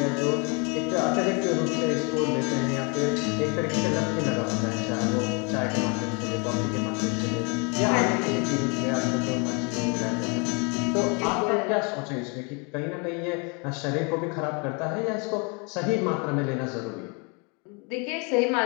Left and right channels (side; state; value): right; quieter; 32.9 dB